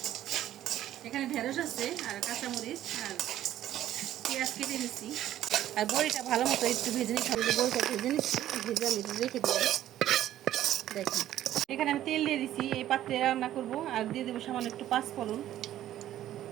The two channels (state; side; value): quieter; left; 12.6 dB